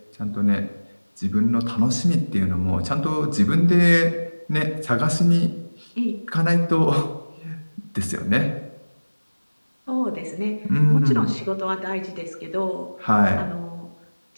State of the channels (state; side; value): inverted; both; correlation -1.00